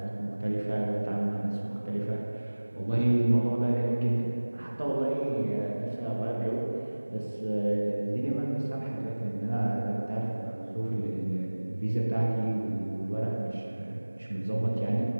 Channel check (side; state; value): both; inverted; correlation -1.00